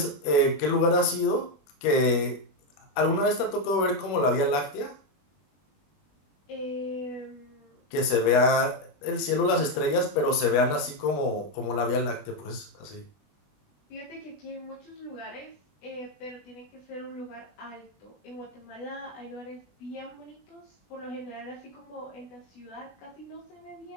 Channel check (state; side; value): late; right; 21 ms